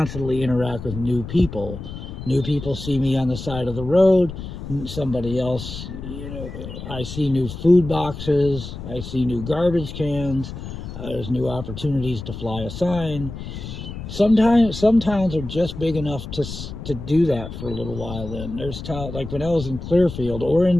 interact with new people. New people see me on the side of the road. Somebody else, I see new food boxes. I see new garbage cans. There's new opportunities to fly a sign. Some towns are just big enough to do that for a little while. Then there's towns like when I was in Clearfield or in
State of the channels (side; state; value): left; noise; rumble, 9 dB below the sound